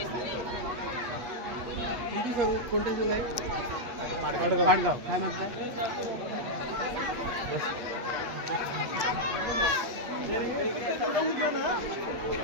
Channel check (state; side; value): late; left; 8.5 ms